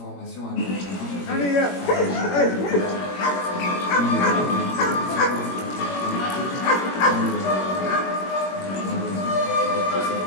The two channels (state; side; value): late; right; 21 ms